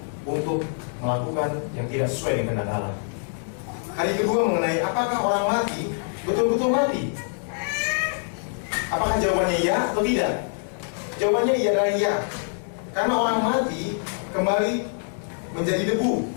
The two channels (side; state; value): right; silent; digital silence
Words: untuk melakukan yang tidak sesuai dengan kehendak Allah. Hari kedua mengenai apakah orang mati betul-betul mati? Apakah jawabannya iya atau tidak? Jawabannya iya dan iya. Karena orang mati kembali menjadi debu,